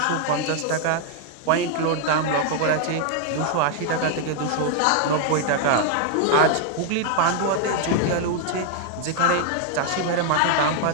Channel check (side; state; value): both; different; correlation 0.00